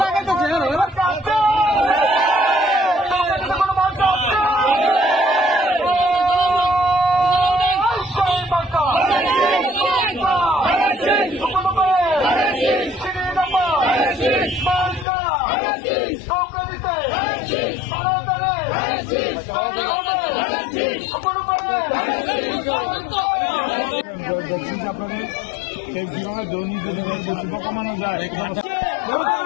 আপনাদের এই জীবনে দৈনিক শুভ কামানো যায়।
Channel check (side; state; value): right; drops out; at 15.1 s